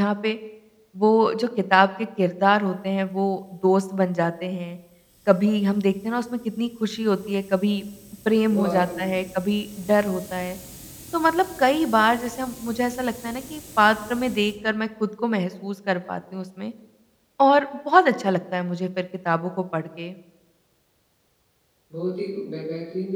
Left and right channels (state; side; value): identical; both; correlation 1.00